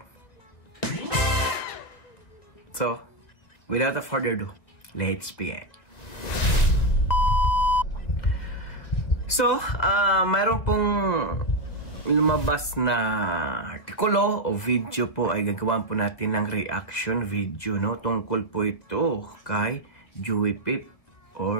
So, without further ado, let's begin. So, mayroon pong lumabas na artikulo o video po ay gagawin po natin ng reaction video, no? Tungkol po ito kay Joey Pip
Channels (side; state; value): right; late; 1.8 ms